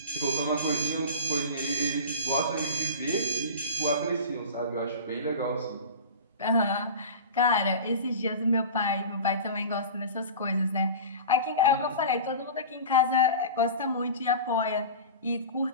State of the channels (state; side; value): inverted; both; correlation -0.33